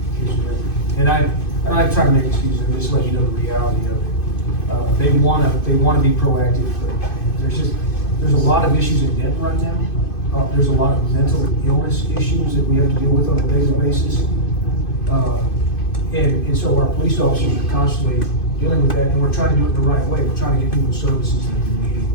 is rare. And I'm trying to make excuses, I'm just letting you know the reality of it. They wanna be proactive, but there's a lot of issues in Denton right now. There's a lot of mental illness issues that we have to deal with on a daily basis. And so our police officers are constantly dealing with that, and we're trying to do it the right way. We're trying to get people services that they need.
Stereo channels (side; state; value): right; late; 2.5 ms